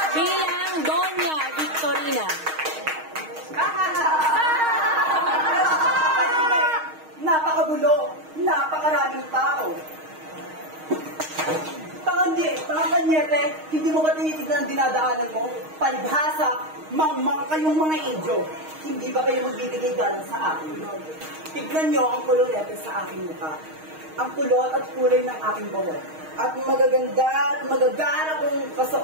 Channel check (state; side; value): late; left; 6.4 ms